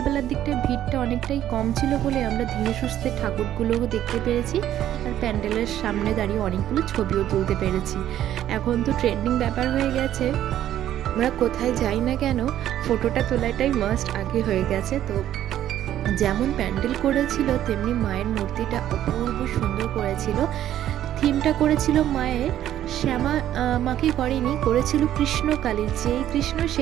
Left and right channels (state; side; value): quieter; left; 11.8 dB